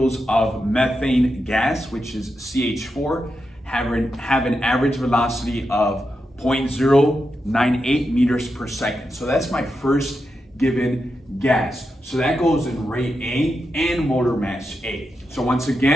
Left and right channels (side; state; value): both; normal; correlation 0.87